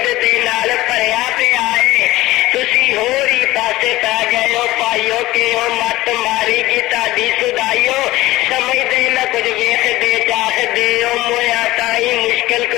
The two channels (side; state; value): right; quieter; 17.7 dB